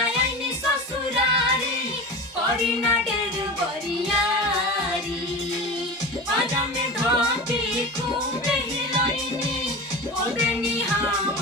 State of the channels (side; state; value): both; normal; correlation 0.29